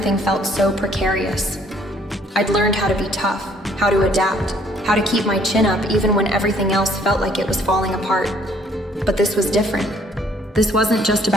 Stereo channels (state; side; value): normal; both; correlation 0.62